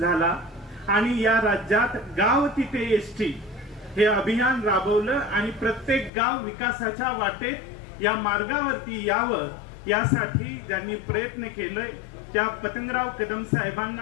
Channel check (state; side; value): drops out; right; at 6.1 s